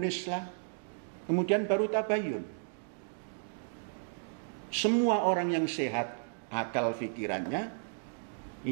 kemudian baru tabayun. Semua orang yang sehat akal pikirannya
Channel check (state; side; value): silent; left; digital silence